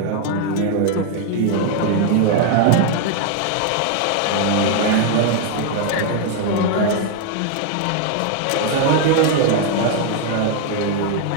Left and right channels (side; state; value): both; different; correlation 0.00